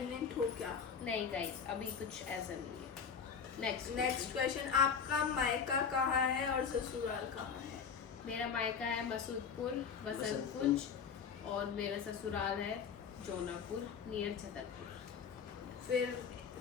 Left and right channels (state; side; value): quieter; right; 6.5 dB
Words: हो क्या? नहीं गाइस, अभी कुछ ऐसा नहीं है। नेक्स्ट क्वेश्चन, आपका मायका कहाँ है और ससुराल कहाँ है? मेरा मायका है मसूदपुर बसंत कुंज और मेरा ससुराल है जौनापुर नियर छतरपुर।